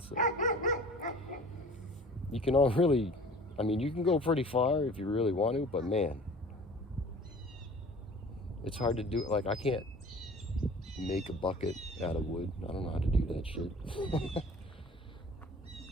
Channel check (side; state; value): both; normal; correlation 0.45